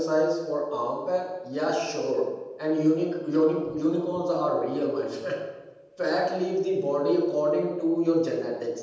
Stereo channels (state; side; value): identical; both; correlation 1.00